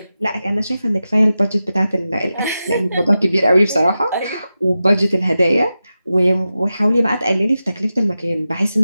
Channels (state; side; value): inverted; both; correlation -0.92